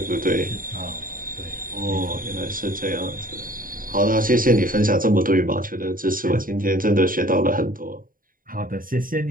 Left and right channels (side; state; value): left; late; 0.41 ms